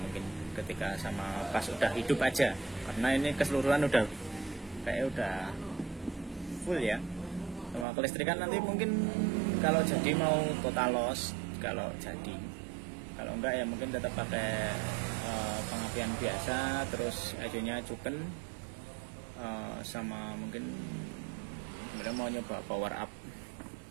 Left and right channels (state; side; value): drops out; left; at 7.9 s